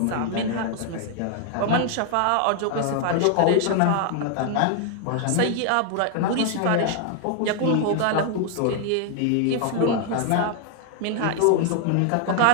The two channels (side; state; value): both; different; correlation 0.00